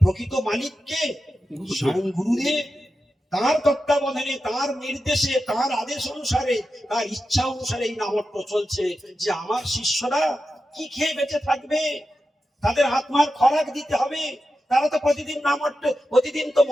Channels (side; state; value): both; normal; correlation 0.91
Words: প্রকৃত মালিককে? স্বয়ং গুরুদেব। তার তত্ত্বাবধানে, তার নির্দেশে, তার আদেশ অনুসারে, তার ইচ্ছা অনুসারে এই নামহট্ট চলছে। যে আমার শিষ্যরা কি খেয়ে বেঁচে থাকবে, তাদের আত্মার খোরাক দিতে হবে। তারা তো প্রতিদিন নামহট্ট, প্রতিদিন তো